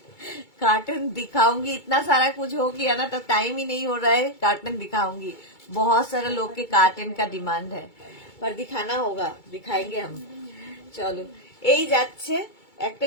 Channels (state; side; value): late; right; 2.3 ms